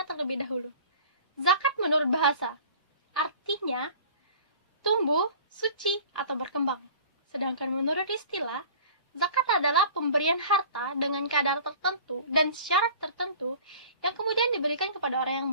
terlebih dahulu. Zakat menurut bahasa, artinya tumbuh, suci, atau berkembang. Sedangkan menurut istilah, zakat adalah pemberian harta dengan kadar tertentu dan syarat tertentu yang kemudian diberikan kepada orang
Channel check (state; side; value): inverted; both; correlation -0.45